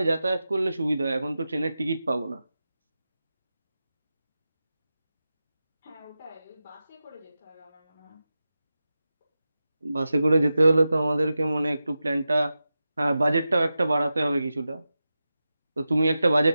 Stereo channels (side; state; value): both; inverted; correlation -0.92